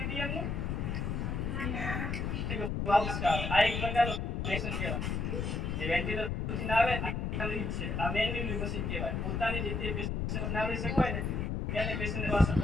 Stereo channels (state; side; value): noise; left; rumble, 1 dB below the sound